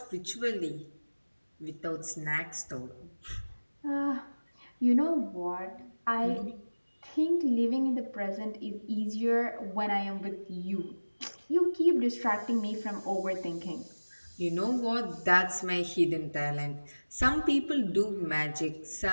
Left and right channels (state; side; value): inverted; both; correlation -1.00